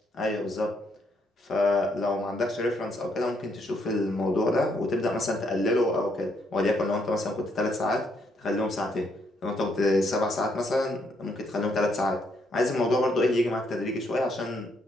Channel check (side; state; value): both; normal; correlation 0.73